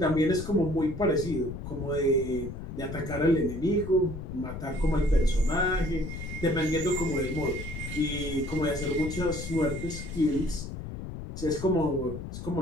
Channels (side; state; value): left; noise; rumble, 8 dB below the sound